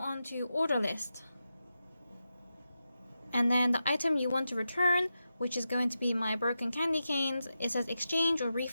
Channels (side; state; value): both; inverted; correlation -0.89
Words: to order list. And then the item you want to return, which is going to be my broken candy canes, it says exchange or